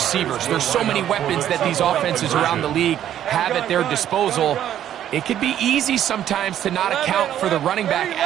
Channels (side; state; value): left; quieter; 11.0 dB